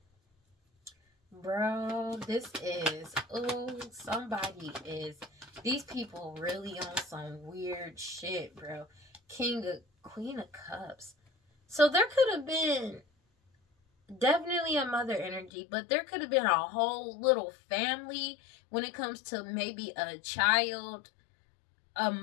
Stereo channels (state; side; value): drops out; right; at 15.5 s